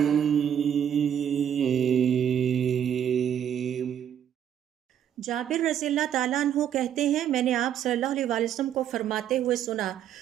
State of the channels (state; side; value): quieter; left; 9.4 dB